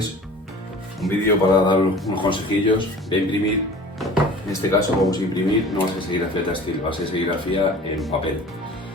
Un vídeo para dar unos consejillos de imprimir. En este caso vamos a imprimir, no va a ser serigrafía textil, va a ser serigrafía en papel,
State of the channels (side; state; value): both; normal; correlation 0.43